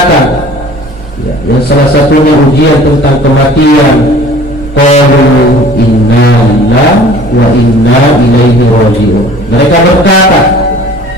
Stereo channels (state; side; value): normal; both; correlation 0.48